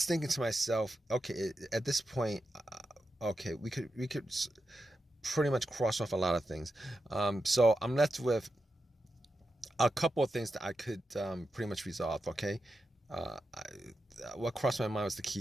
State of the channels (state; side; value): normal; both; correlation 0.89